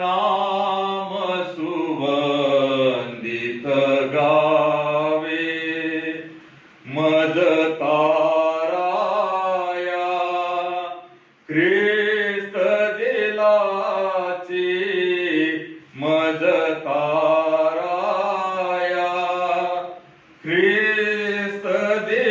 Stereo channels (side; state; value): both; identical; correlation 1.00